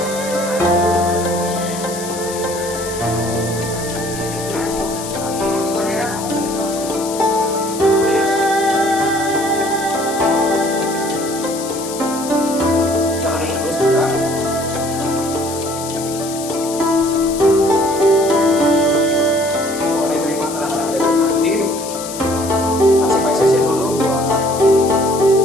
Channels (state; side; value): noise; left; hiss, 10 dB below the sound